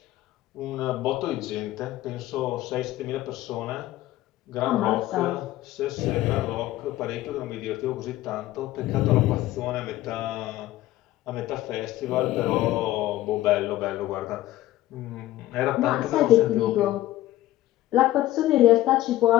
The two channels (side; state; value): right; quieter; 15.4 dB